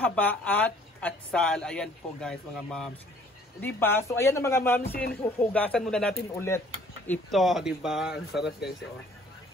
at atsal. Ayan po guys mga moms. Di ba? So ayan na mga moms, hugasan muna natin ulit. Ito, di ba? Ang sarap guys, oh.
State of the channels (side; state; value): both; normal; correlation 0.57